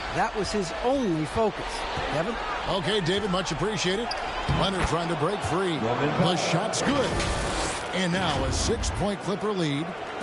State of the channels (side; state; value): both; identical; correlation 1.00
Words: That was his only focus. Kevin? Okay, David, much appreciated. Leonard trying to break free. The shot's good. And now a 6-point Clipper lead.